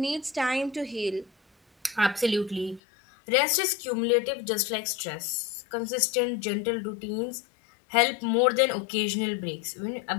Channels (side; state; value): right; drops out; at 2.8 s